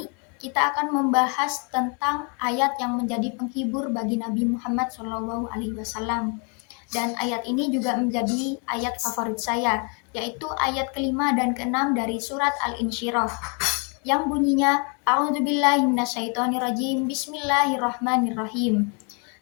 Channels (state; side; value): quieter; right; 36.5 dB